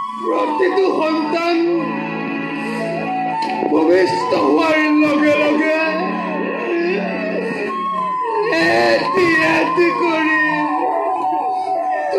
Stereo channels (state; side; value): identical; both; correlation 1.00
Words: প্ৰতিটো সন্তান ভূমিষ্ঠ হোৱাৰ লগে লগে এটি এটি কৰি